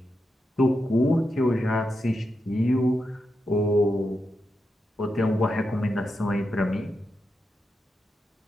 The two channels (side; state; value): both; normal; correlation 0.87